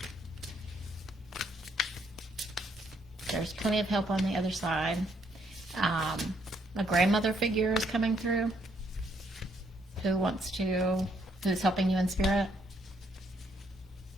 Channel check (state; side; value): normal; both; correlation 0.71